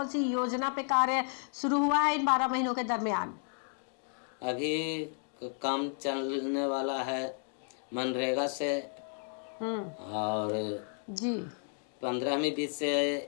सी योजना पे कार्य शुरू हुआ है इन 12 महीनों के दरमियान? अभी काम चलने वाला है मनरेगा से और जी 15वीं बीत से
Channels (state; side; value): silent; right; 56 dB below the other